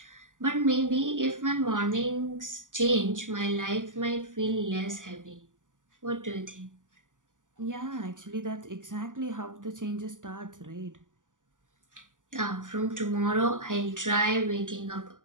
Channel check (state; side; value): late; left; 0.87 ms